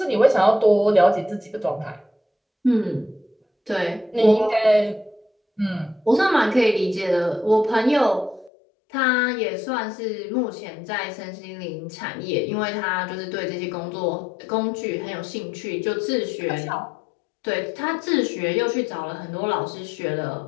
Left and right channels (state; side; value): drops out; right; at 8.5 s